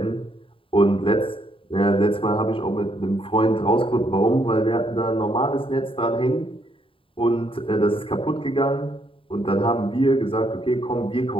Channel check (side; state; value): right; late; 0.26 ms